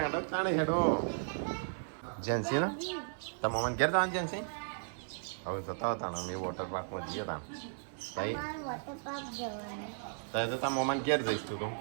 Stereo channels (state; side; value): silent; left; 54 dB below the other